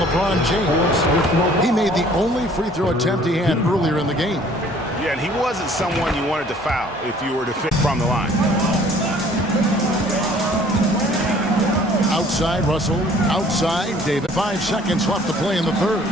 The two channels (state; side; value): normal; both; correlation 0.55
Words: James. He made the only free throw attempt he had earlier in the game. Yeah, and he wasn't someone you wanted to foul if you were to fit from the line. Outside Russell, outside David. 5 seconds left to play in the third.